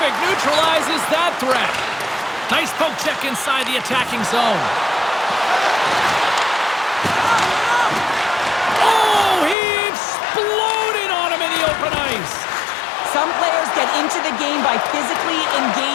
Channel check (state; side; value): drops out; right; at 9.6 s